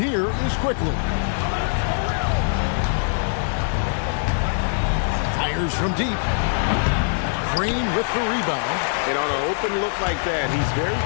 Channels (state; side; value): silent; right; digital silence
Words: is Quickly. Fires from deep. Green with the rebound. And on an open look like that, he's very